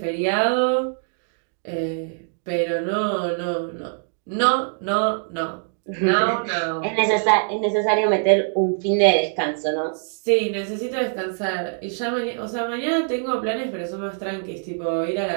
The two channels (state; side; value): silent; left; digital silence